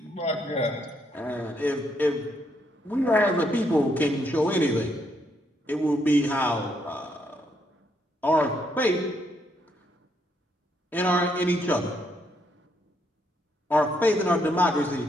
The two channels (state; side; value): normal; both; correlation 0.75